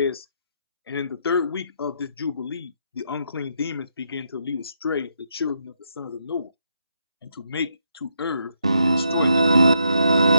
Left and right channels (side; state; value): both; inverted; correlation -0.78